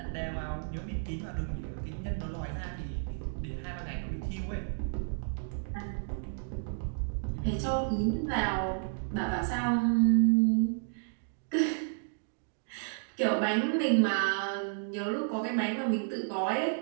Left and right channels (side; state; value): left; silent; digital silence